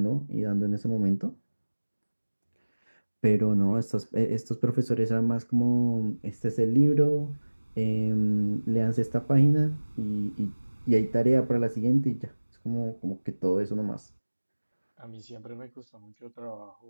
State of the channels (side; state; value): both; inverted; correlation -1.00